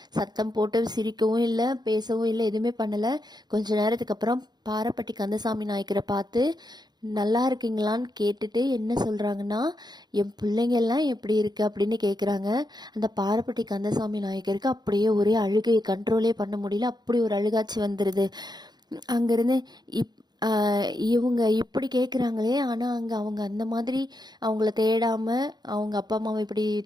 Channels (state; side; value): late; left; 0.20 ms